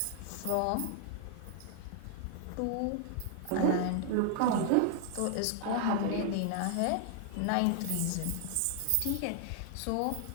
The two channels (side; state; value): both; different; correlation 0.00